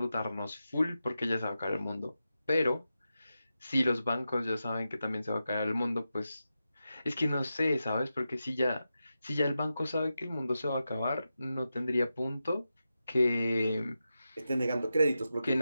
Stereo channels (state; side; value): inverted; both; correlation -0.90